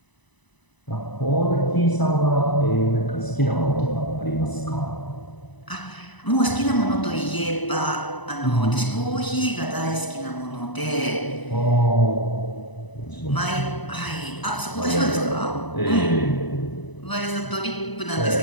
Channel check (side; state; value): right; late; 1.0 ms